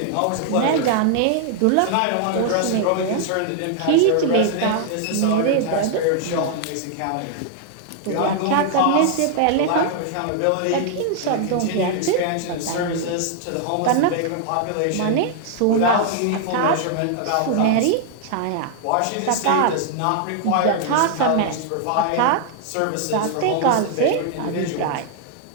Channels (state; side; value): different; both; correlation 0.00